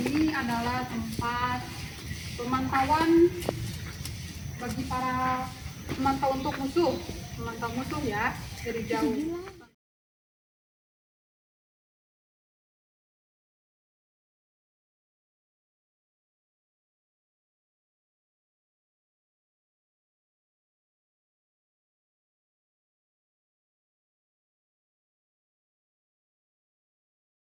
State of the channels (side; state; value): both; identical; correlation 1.00